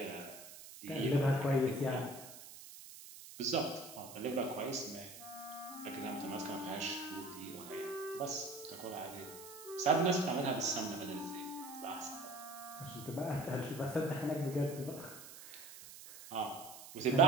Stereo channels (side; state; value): right; noise; hiss, 15 dB below the sound